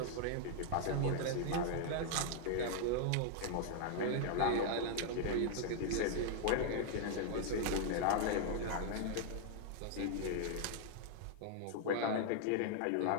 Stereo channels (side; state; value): both; different; correlation 0.00